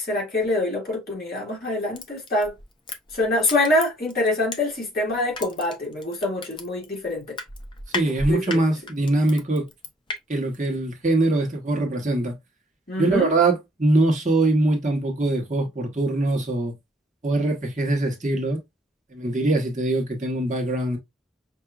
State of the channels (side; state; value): both; normal; correlation 0.61